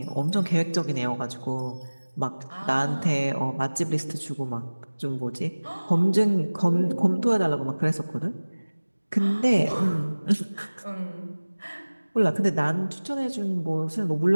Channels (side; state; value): both; inverted; correlation -1.00